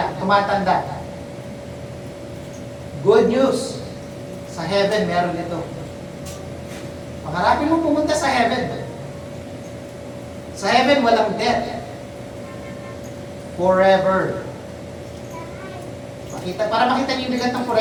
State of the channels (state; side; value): identical; both; correlation 1.00